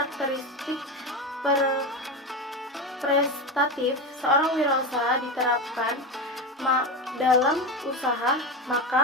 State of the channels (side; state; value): both; normal; correlation 0.19